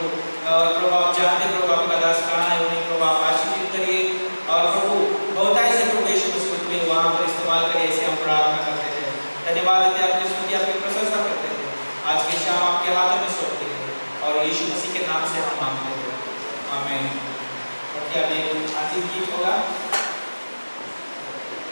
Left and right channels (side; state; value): both; inverted; correlation -1.00